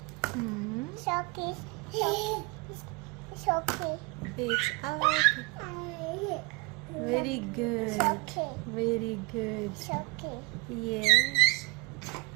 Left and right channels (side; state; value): left; quieter; 26.3 dB